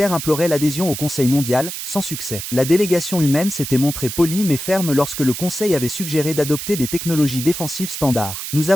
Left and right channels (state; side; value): noise; right; hiss, 7 dB below the sound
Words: implorait l'adhésion au Conseil mondial, sans succès. La délégation humaine s'était montrée polie mais ferme lorsque le Conseil avait suggéré d'adopter des technologies défensives standards. Nous